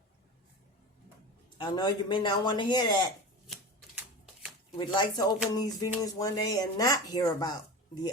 I know you may not want to hear that. We'd like to open these videos one day and not hear about the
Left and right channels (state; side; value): normal; both; correlation 0.29